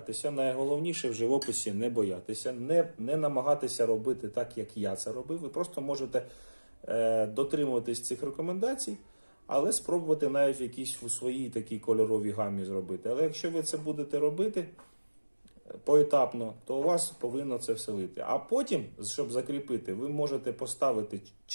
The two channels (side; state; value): both; inverted; correlation -1.00